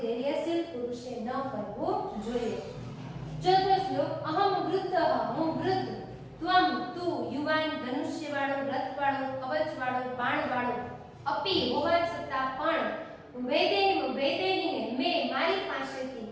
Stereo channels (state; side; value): identical; both; correlation 1.00